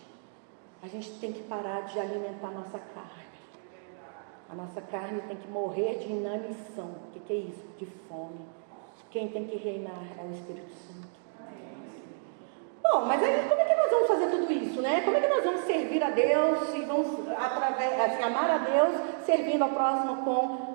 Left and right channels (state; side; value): silent; left; digital silence